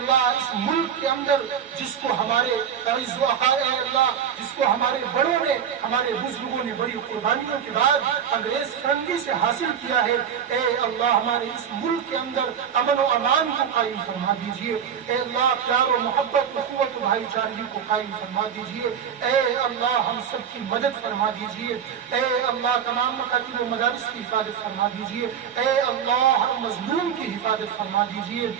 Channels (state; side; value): quieter; left; 8.1 dB